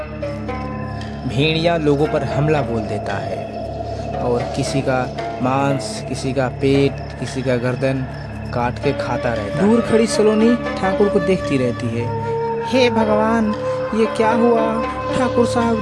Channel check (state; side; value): identical; both; correlation 1.00